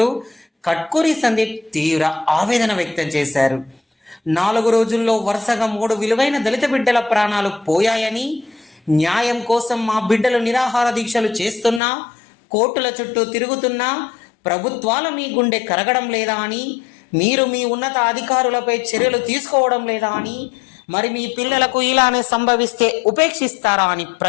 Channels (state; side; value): drops out; right; at 11.8 s